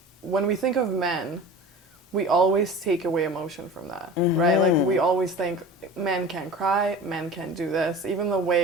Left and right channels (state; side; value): normal; both; correlation 0.37